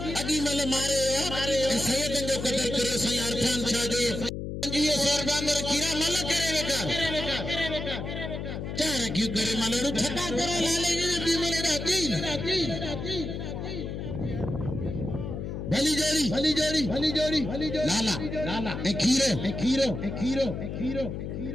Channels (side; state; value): left; noise; hum, 5 dB below the sound